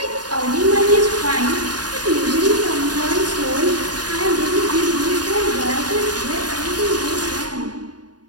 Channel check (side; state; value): left; late; 0.69 ms